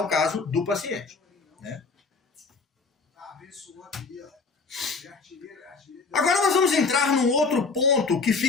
caso do paciente. Né? Agora nós vamos entrar num outro ponto que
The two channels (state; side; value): quieter; right; 4.4 dB